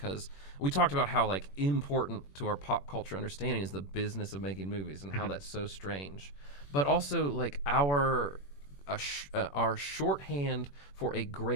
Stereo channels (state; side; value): late; right; 21 ms